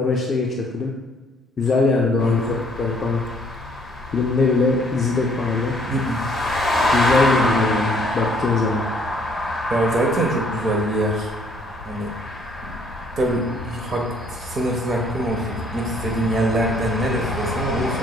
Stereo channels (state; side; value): normal; both; correlation 0.63